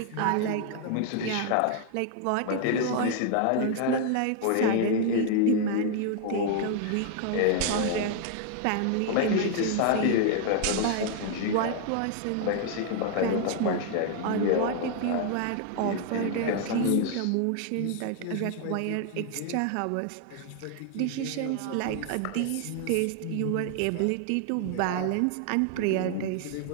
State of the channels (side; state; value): both; different; correlation 0.00